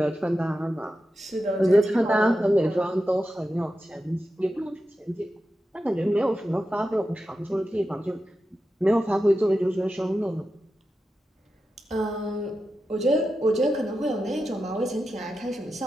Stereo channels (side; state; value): both; normal; correlation 0.90